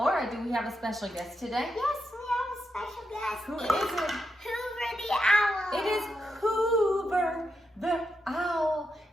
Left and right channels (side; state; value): both; normal; correlation 0.84